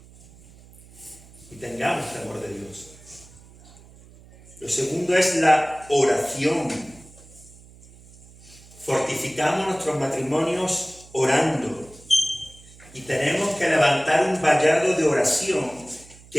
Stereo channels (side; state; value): right; noise; hum, 23 dB below the sound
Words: Y tengamos temor de Dios. Lo segundo es la oración. Fortificamos nuestros matrimonios orando. Y tenemos que levantar un vallado de oración